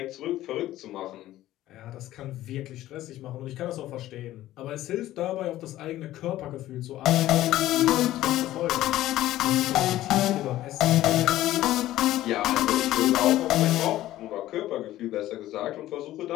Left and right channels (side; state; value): right; quieter; 14.7 dB